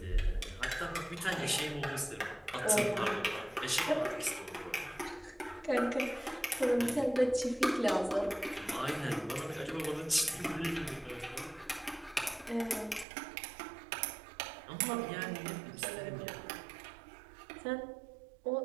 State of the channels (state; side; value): drops out; left; at 13.1 s